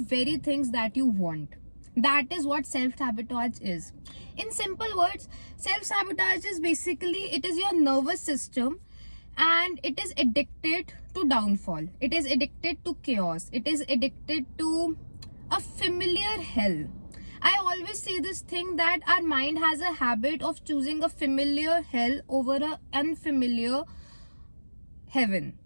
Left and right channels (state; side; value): inverted; both; correlation -1.00